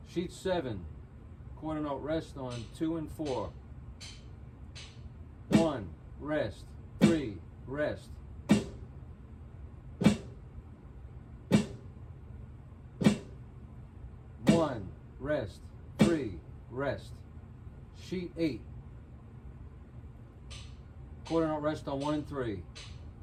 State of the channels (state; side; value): identical; both; correlation 1.00